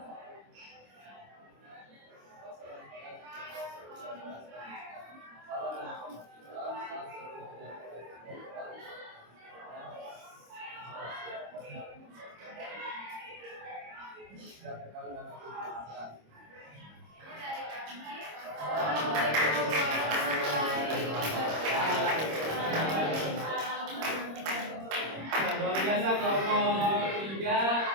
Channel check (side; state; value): left; late; 26 ms